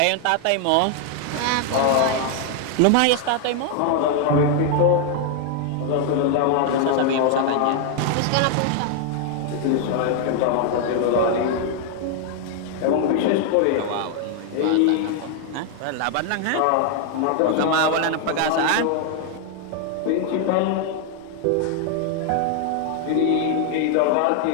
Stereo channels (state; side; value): different; both; correlation 0.00